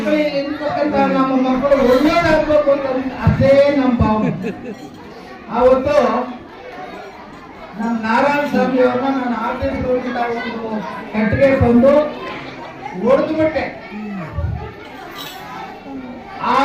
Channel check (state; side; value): identical; both; correlation 1.00